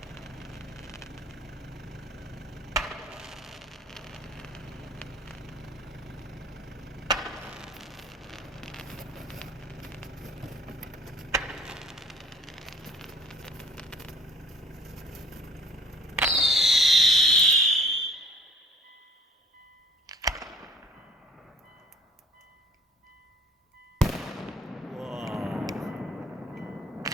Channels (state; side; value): normal; both; correlation 0.51